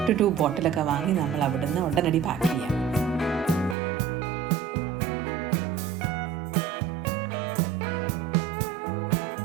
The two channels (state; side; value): drops out; left; at 3.8 s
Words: to 2 ബോട്ടിലൊക്കെ വാങ്ങി നമ്മൾ അവിടുന്ന് ഉടനടി പാക്ക് ചെയ്യാം.